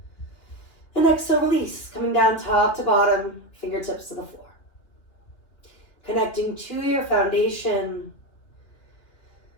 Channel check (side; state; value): right; late; 3.0 ms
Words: And exhale, release, coming down top to bottom, fingertips to the floor. Connecting to your foundation.